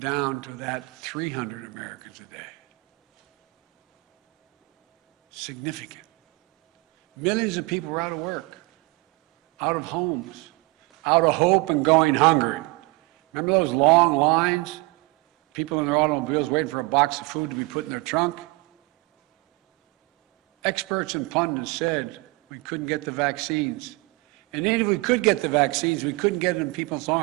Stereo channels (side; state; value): left; quieter; 24.5 dB